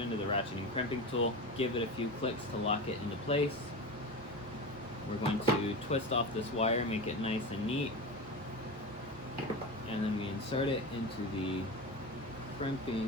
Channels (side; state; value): both; normal; correlation 0.25